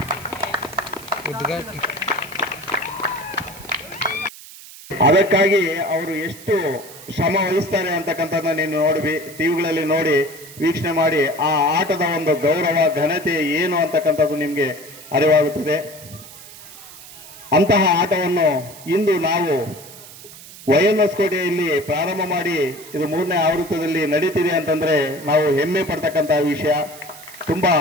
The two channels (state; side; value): noise; right; hiss, 17 dB below the sound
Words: ಅದಕ್ಕಾಗಿ ಅವರು ಎಷ್ಟು ಶ್ರಮ ವಹಿಸ್ತಾರೆ ಅಂತಕ್ಕಂಥದ್ದನ್ನ ನೀನು ನೋಡಿ ಟಿವಿಗಳಲ್ಲಿ ನೋಡಿ ವೀಕ್ಷಣೆ ಮಾಡಿ ಆ ಆಟದ ಒಂದು ಗೌರವ ಘನತೆ ಏನು ಅಂತಕ್ಕಂಥದ್ದು ನಿಮಗೆ ಅರಿವಾಗುತ್ತದೆ. ಅಂತಹ ಆಟವನ್ನು ಇಂದು ನಾವು YNS ಕೋಟೆಯಲ್ಲಿ ಪ್ರಾರಂಭ ಮಾಡಿ ಇದು 3ನೇ ಆವೃತ್ತದಲ್ಲಿ ನಡೀತಿದೆ ಅಂತಂದ್ರೆ ನಾವು ಹೆಮ್ಮೆ ಪಡ್ತಕ್ಕಂತಹ ವಿಷಯ. ತುಂಬಾ